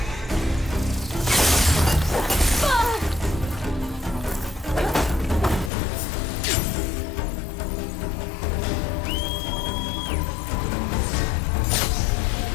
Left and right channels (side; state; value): right; drops out; at 5.7 s